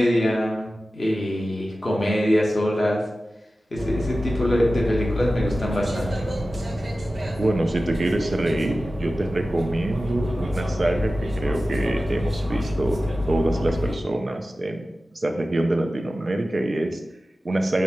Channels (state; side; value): normal; both; correlation 0.95